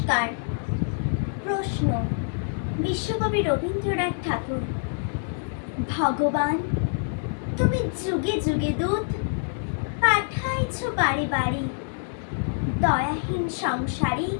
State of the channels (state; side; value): silent; right; 61 dB below the other